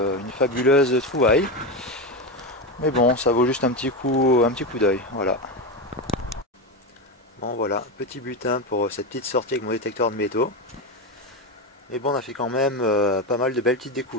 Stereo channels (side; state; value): both; normal; correlation 0.15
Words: fabuleuse trouvaille. Mais bon, ça vaut juste un petit coup d'œil. Voilà. Bon voilà, petit butin pour cette petite sortie avec mon détecteur de métaux. Mais bon, on a fait quand même pas mal de belles petites